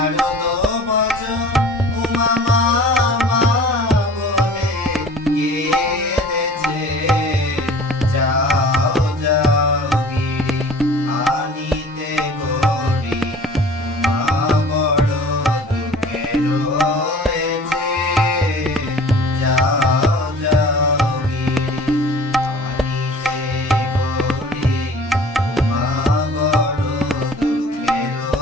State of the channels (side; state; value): both; normal; correlation 0.45